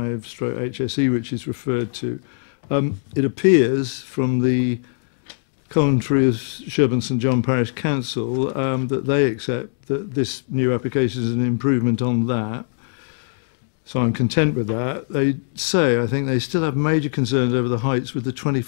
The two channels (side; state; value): right; silent; digital silence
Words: which is referred to. It appears from the commentary of Sherborne St John Parish Council that they accept that this new application is an improvement on that. So I'm content with that. They say, I think they still have major concerns over the heights with the